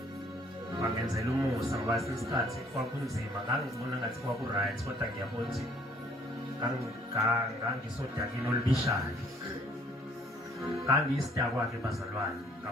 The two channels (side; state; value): both; normal; correlation 0.60